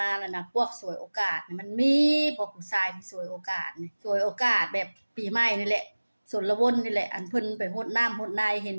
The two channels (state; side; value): inverted; both; correlation -1.00